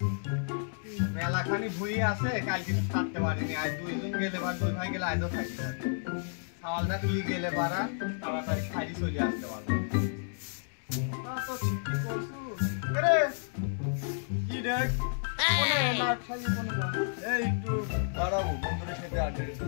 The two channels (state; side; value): silent; right; digital silence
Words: মেলাখানি ভুই আছে, কাল কিছু থাকতে পারিনি, আজ 2 জন গেলে বা 2 ভাই গেলে আজও থাকি না। সাওয়ালটা তুই গেলে পারা তাড়াতাড়ি খাইলি চলে আসতে পারবো। তো ঠিকই কইছু। রে কি দেখ কোনে না খাই কোনে না। এই একটু দাঁড়াবো, বন্ধুদের সাথে আড্ডা